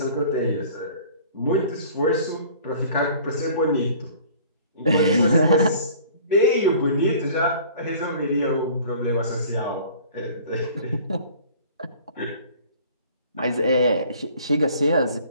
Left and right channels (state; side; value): inverted; both; correlation -0.49